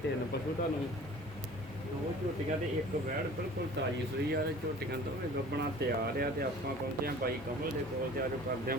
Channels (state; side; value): normal; both; correlation 0.46